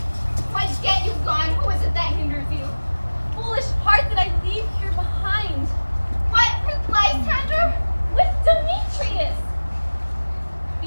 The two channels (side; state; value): both; inverted; correlation -1.00